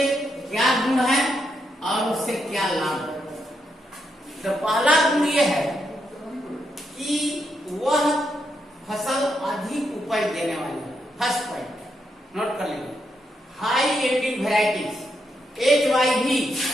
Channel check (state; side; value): normal; both; correlation 0.80